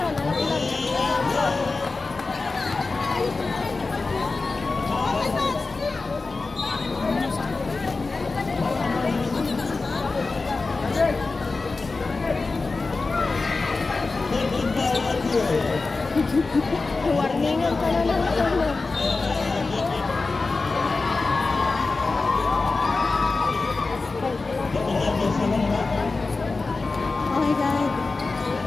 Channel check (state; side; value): quieter; right; 3.8 dB